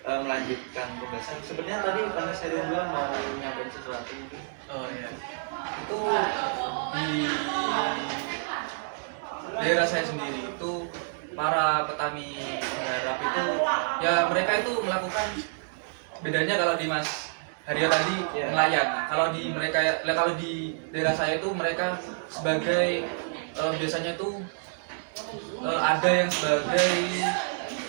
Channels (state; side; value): silent; left; digital silence